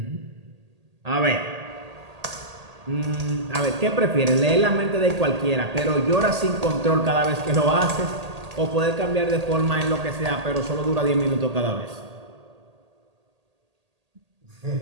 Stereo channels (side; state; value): left; late; 1.8 ms